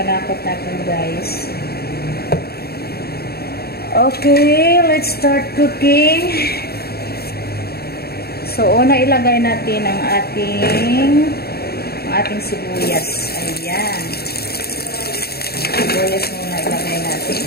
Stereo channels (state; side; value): late; right; 0.46 ms